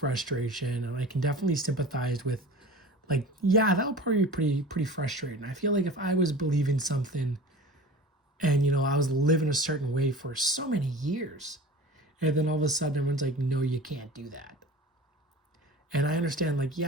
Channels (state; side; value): normal; both; correlation 0.38